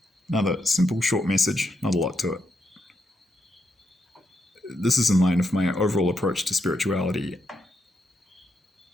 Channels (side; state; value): both; normal; correlation 0.81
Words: Another simple, short message, not a lot to it. This is in line with my overall approach to spirituality,